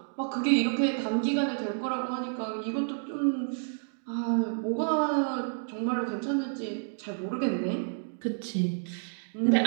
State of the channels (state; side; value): silent; left; digital silence